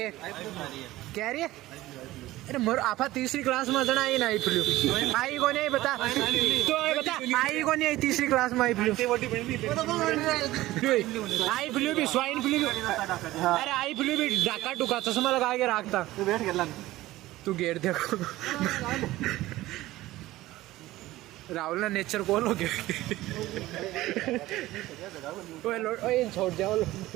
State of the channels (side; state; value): left; quieter; 16.9 dB